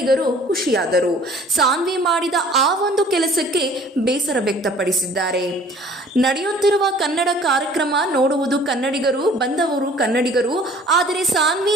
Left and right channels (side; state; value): both; normal; correlation 0.52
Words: ಖುಷಿಯಾದರು. ಸಾನ್ವಿ ಮಾಡಿದ ಆ ಒಂದು ಕೆಲಸಕ್ಕೆ ಬೇಸರ ವ್ಯಕ್ತಪಡಿಸಿದ್ದಾರೆ. ನಡೆಯುತ್ತಿರುವ ಕನ್ನಡ ಕಾರ್ಯಕ್ರಮ ನೋಡುವುದು ಕನ್ನಡಿಗರು, ಬಂದವರು ಕನ್ನಡಿಗರು. ಆದರೆ ಸಾನ್ವಿ